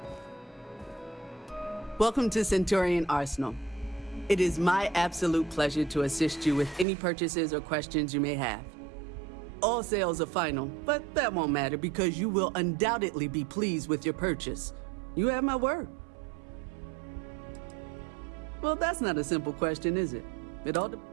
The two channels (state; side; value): drops out; left; at 6.9 s